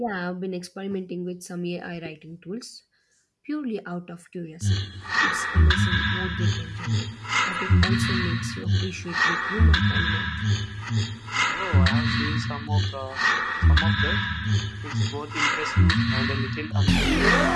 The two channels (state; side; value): identical; both; correlation 1.00